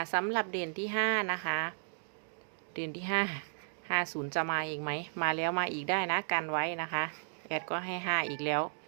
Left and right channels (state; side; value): silent; left; digital silence